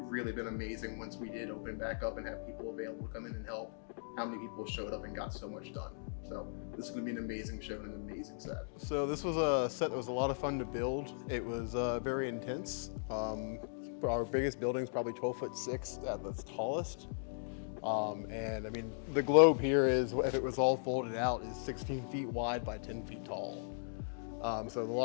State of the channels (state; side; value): silent; right; digital silence